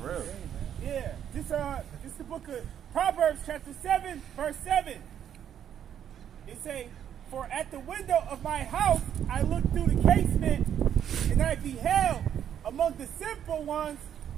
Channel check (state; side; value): quieter; left; 9.5 dB